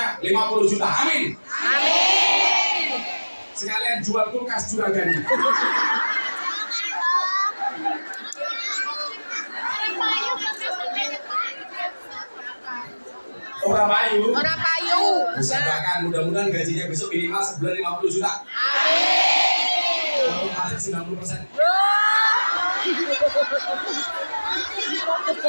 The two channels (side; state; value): both; inverted; correlation -1.00